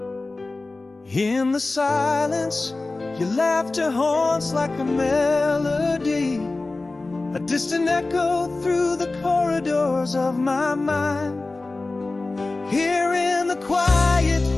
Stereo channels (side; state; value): right; quieter; 3.3 dB